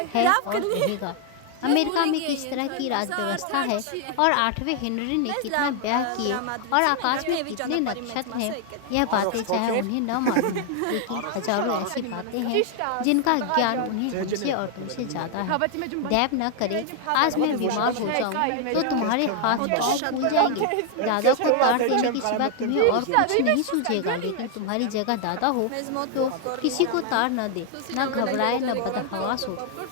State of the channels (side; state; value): both; different; correlation 0.00